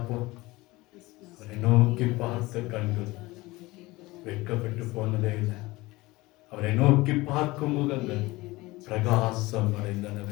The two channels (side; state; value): right; quieter; 20.7 dB